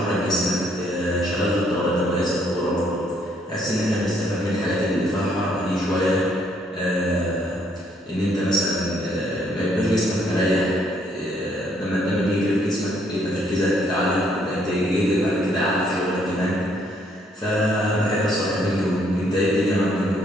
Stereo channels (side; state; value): both; normal; correlation 0.68